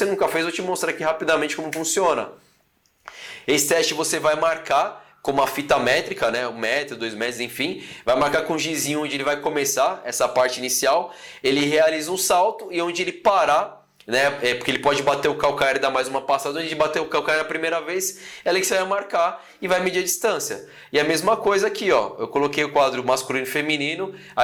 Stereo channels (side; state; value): both; identical; correlation 1.00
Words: nunca fez, eu vou te mostrar aqui rapidamente como funciona. Esse teste você vai marcar com uma fita métrica, né? 1 metro, 2 metros, enfim. Vai marcar com um gizinho onde ele vai começar essa parte inicial. Ele realiza um salto e onde ele parar, né? Porque ele pode bater o calcanhar e dar mais uma passada. Onde ele bater o calcanhar na primeira vez, é ali que você vai marcar e vai medir a distância. E a mesma coisa aqui, ó. Eu coloquei o quadro masculino e feminino,